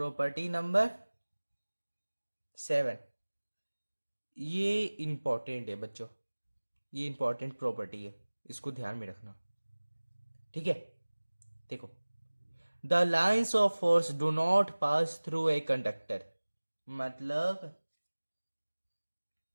नंबर 7, ये इंपॉर्टेंट है बच्चों, ये इंपॉर्टेंट प्रॉपर्टी है, इसको ध्यान में रखना। ठीक है? देखो, the lines of force do not pass through a conductor. मतलब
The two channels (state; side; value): inverted; both; correlation -1.00